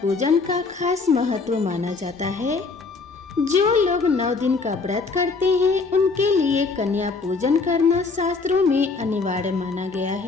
का खास महत्व माना जाता है। जो लोग 9 दिन का व्रत करते हैं उनके लिए कन्या पूजन करना शास्त्रों में अनिवार्य माना गया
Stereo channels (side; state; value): right; quieter; 4.3 dB